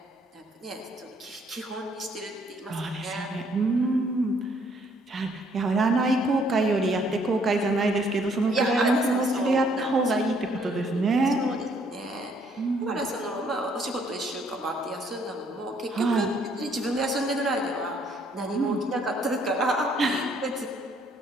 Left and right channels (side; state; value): both; normal; correlation 0.66